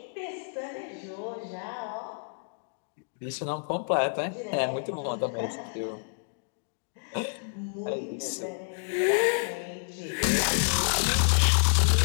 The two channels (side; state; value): right; silent; digital silence